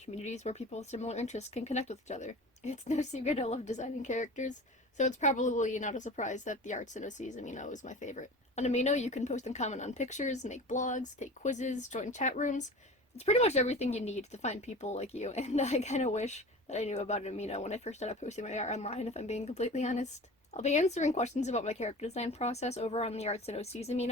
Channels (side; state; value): both; normal; correlation 0.36